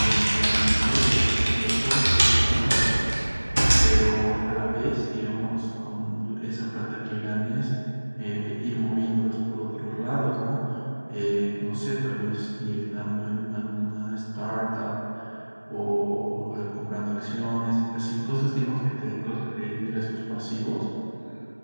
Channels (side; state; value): both; inverted; correlation -1.00